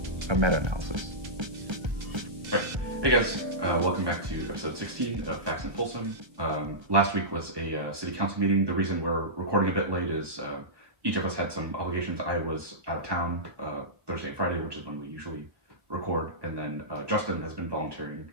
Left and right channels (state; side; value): late; left; 1.3 ms